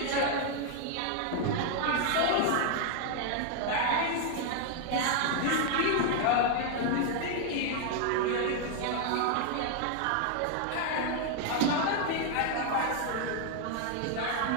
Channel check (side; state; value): both; different; correlation 0.00